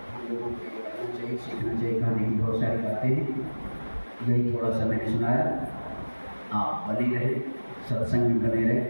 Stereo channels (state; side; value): inverted; both; correlation -1.00